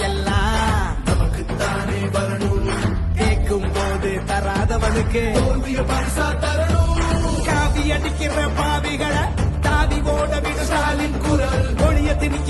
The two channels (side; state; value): both; identical; correlation 1.00